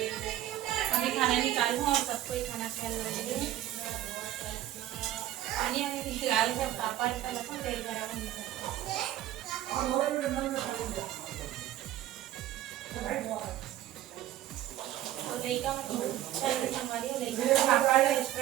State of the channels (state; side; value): quieter; left; 13.2 dB